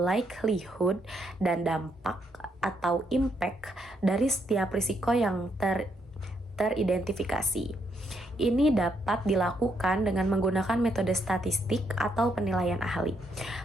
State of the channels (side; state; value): both; normal; correlation 0.75